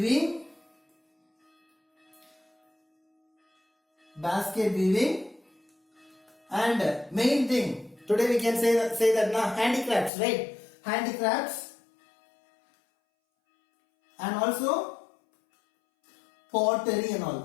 and main thing today we can say that now handicrafts, right? Handicrafts and also pottery and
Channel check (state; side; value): drops out; right; at 10.1 s